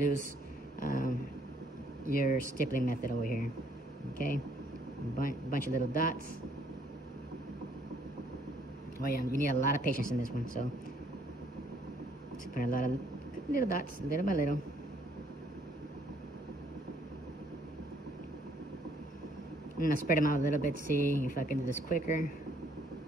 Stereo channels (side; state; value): both; normal; correlation 0.66